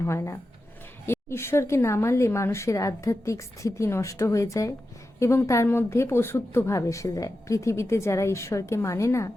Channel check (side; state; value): both; normal; correlation 0.91